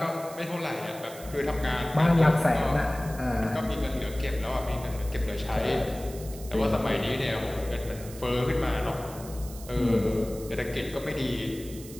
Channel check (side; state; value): right; noise; hiss, 16 dB below the sound